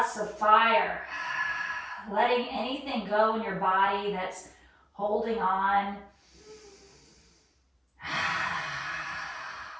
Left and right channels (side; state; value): both; identical; correlation 1.00